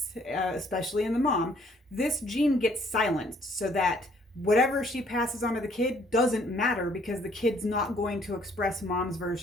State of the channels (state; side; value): normal; both; correlation 0.63